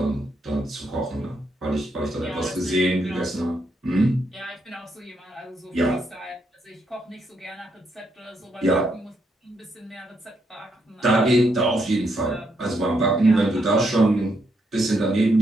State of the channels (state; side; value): normal; both; correlation 0.77